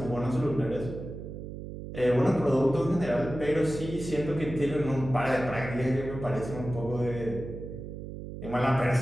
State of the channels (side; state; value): right; noise; hum, 9 dB below the sound